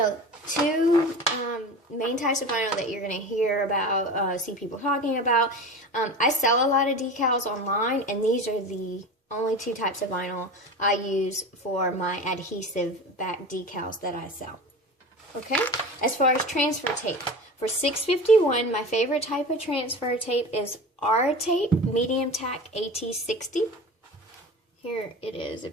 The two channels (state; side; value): normal; both; correlation 0.32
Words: two main types of vinyl that you're going to hear about, see people talking about. I sell a lot of decals online, and these are the only two types of vinyl I use for my adhesive back decals that I sell. Okay, as far as transfer tape, for 651, my favorite type of transfer tape is R tape, medium tack AT60. Here it is